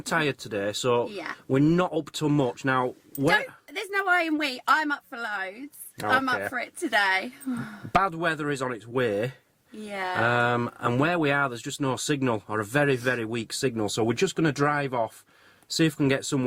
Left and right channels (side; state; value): both; identical; correlation 1.00